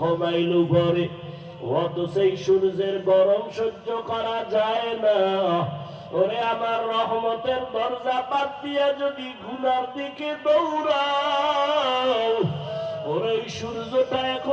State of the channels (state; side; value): identical; both; correlation 1.00